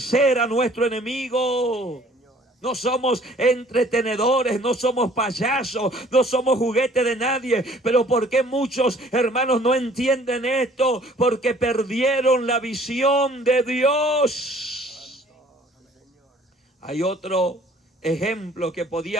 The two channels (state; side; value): normal; both; correlation 0.55